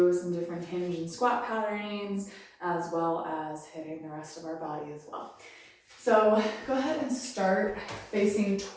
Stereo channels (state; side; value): identical; both; correlation 1.00